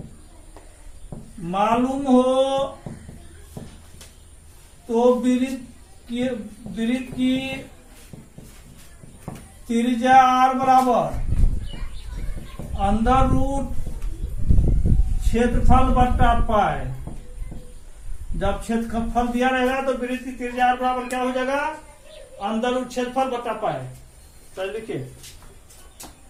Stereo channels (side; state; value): both; identical; correlation 1.00